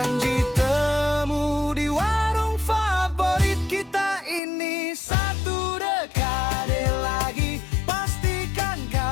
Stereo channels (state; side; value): drops out; right; at 4.4 s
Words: temu di warung favorit kita ini. Satu dekade lagi, pastikan